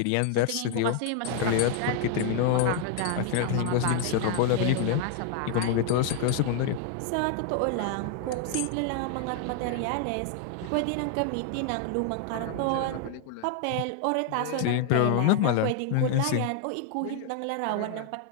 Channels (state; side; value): different; both; correlation 0.00